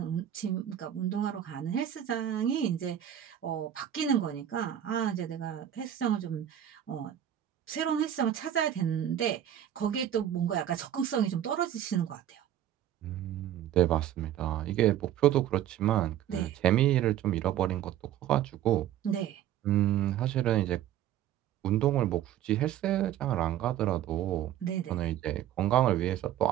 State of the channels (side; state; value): left; quieter; 11.1 dB